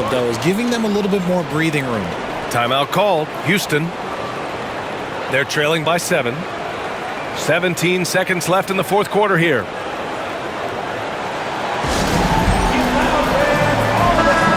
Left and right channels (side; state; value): both; identical; correlation 1.00